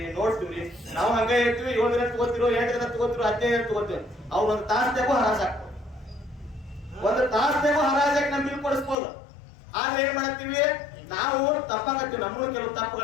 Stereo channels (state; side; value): drops out; right; at 9.0 s